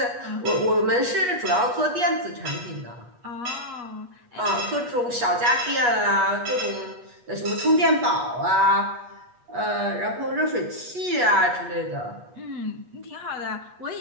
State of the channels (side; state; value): left; late; 8.3 ms